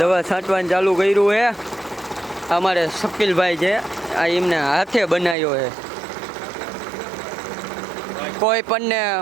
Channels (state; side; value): drops out; left; at 5.4 s